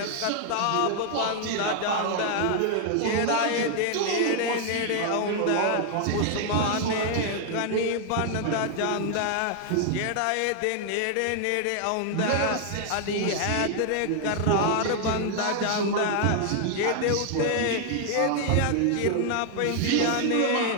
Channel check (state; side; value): different; both; correlation 0.00